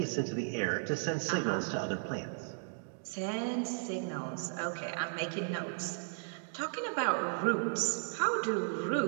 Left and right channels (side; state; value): left; silent; digital silence